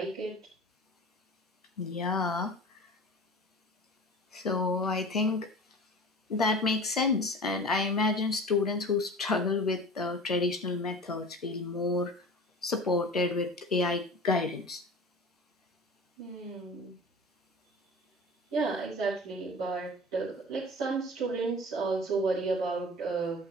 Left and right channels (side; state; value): both; normal; correlation 0.38